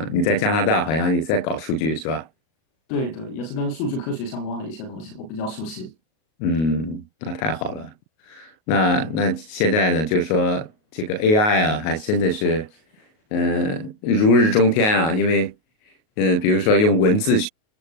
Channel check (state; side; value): late; right; 38 ms